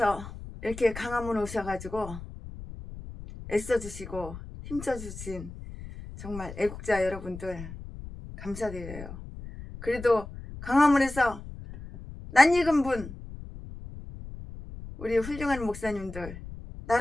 이렇게 강화문 오셔가지고 애써주시고 힘써주신 정말 애국자 여러분들 감사드려요. 그래도 강화문에서 낯익은 분, 우리 훌륭한 목사님들,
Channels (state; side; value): noise; left; rumble, 12 dB below the sound